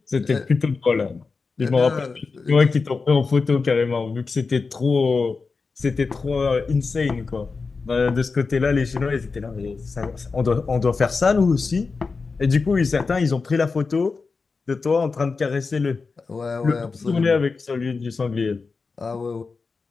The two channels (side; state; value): right; quieter; 4.5 dB